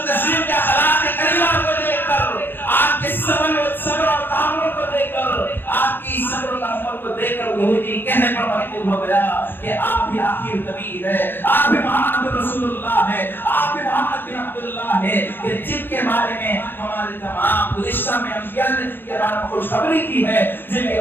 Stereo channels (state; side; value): late; right; 0.10 ms